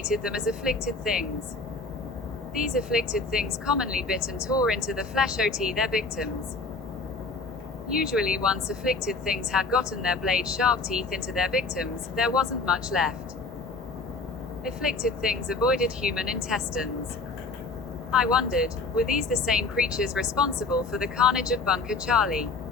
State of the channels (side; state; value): right; quieter; 3.8 dB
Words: them as afflicted things. These afflicted things commonly bit and tore into the flesh of their victims. Usually once afflicted things had gotten their blade-sharp teeth into their victims, there wasn't much left. Afflicted things avoided human intestines. I wondered, were these the same creatures responsible for the carnage of Bunker Charlie?